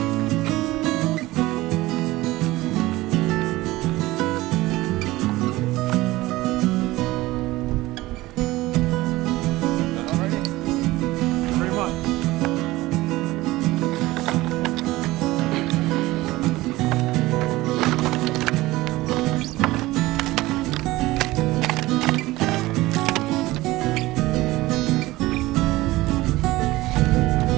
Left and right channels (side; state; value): left; quieter; 18.6 dB